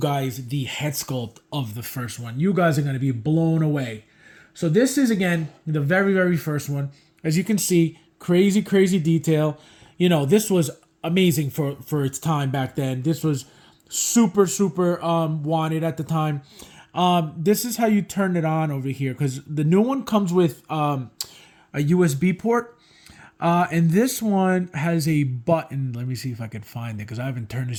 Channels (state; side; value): identical; both; correlation 1.00